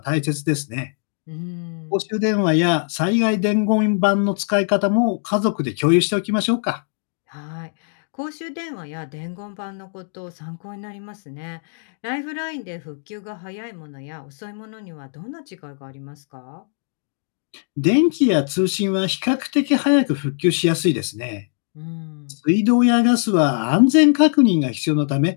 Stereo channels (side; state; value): right; silent; 65 dB below the other